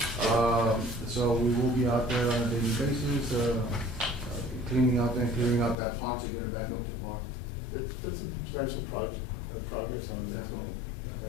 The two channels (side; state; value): right; drops out; at 5.8 s